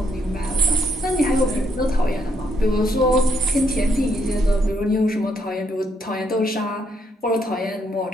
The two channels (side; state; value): both; normal; correlation 0.74